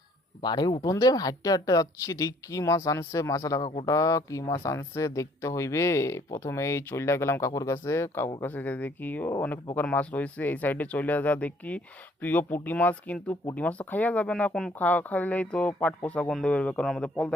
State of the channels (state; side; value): normal; both; correlation 0.61